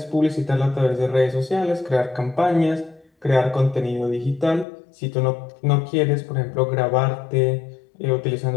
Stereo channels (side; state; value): right; drops out; at 4.7 s